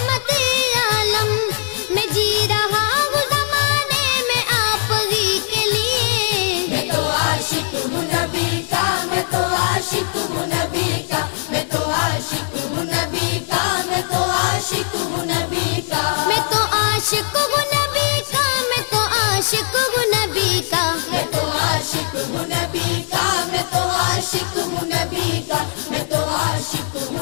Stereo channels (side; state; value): right; silent; 66 dB below the other